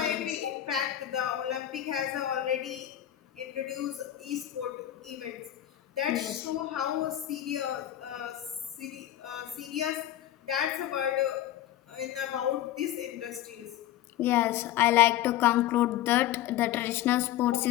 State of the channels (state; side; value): quieter; right; 12.7 dB